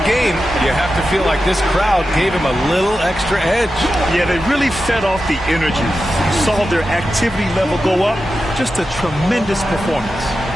game. You have to feel like this crowd gave him a little extra edge. Yeah, they really fed off the energy. You saw their activity level go up. Just a tremendous performance.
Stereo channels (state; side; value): normal; both; correlation 0.91